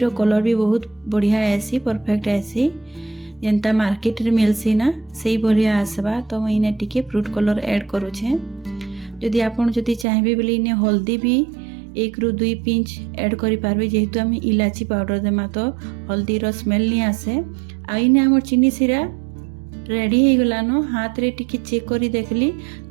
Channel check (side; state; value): left; drops out; at 10.1 s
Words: कलर भी बहुत बढ़िया आसी, परफेक्ट आसी। जेंता मार्केट रे मिलसी ना सही बढ़िया आसबा। तो मुई इने टिके फ्रूट कलर ऐड करूछे। जदि आपन जदि चाहबे बोले इने हल्दी भी 1 रु 2 पिंच ऐड करि पारबे। जेहेतु हम इलाची पाउडर देमा तो हल्दी रो स्मेल नहीं आसे। आ इने हमर चीनी सिरा रेडी हो गलानो। हाथ रे टिके चेक करी देखली